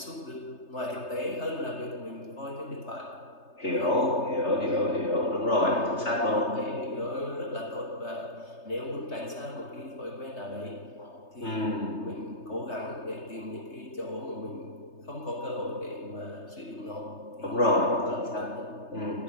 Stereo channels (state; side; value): late; right; 3.3 ms